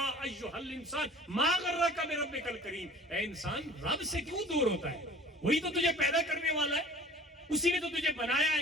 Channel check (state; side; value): normal; both; correlation 0.46